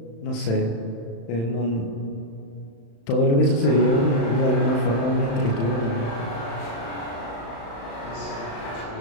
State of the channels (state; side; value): late; right; 35 ms